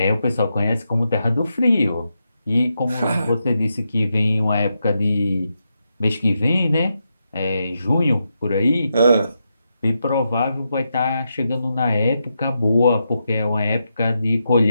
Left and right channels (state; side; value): inverted; both; correlation -0.85